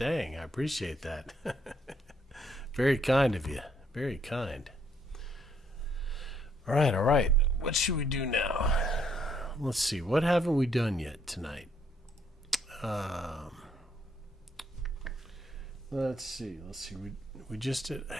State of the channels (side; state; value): both; normal; correlation 0.70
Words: I appreciate that. Very kind of you. Very kind. All right, all right. What should we do now? Let's see. What haven't we done yet tonight? Let's see. We just did.